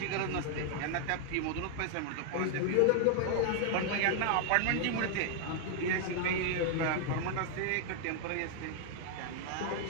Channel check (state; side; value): different; both; correlation 0.00